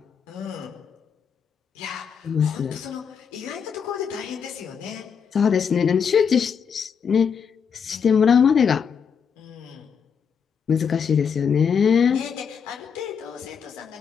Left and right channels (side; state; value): right; quieter; 6.8 dB